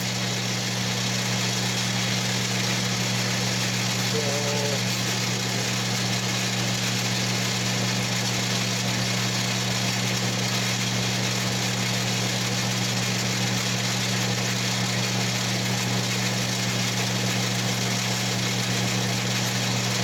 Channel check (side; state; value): both; identical; correlation 1.00